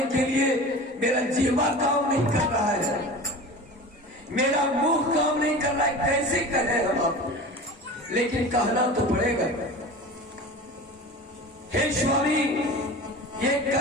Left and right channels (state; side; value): normal; both; correlation 0.35